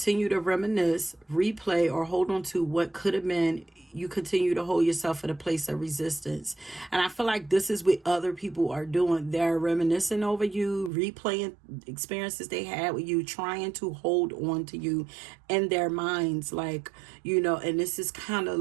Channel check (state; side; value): drops out; left; at 10.9 s